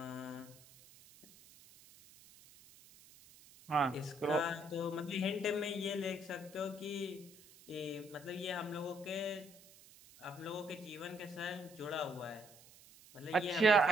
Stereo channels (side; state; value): right; noise; hiss, 22 dB below the sound